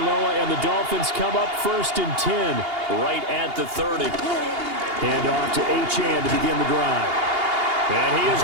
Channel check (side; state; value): left; late; 2.8 ms